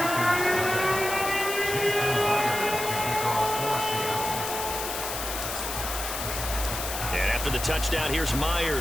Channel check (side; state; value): left; noise; hiss, 5 dB below the sound